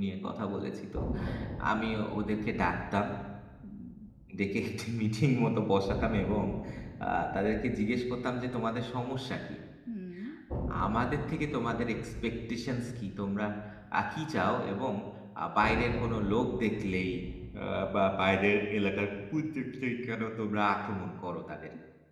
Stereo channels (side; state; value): both; identical; correlation 1.00